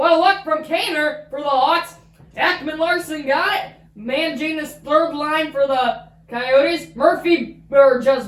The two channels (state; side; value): identical; both; correlation 1.00